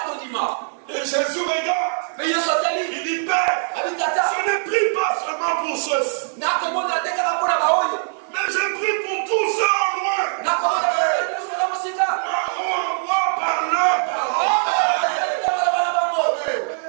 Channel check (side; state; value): left; silent; digital silence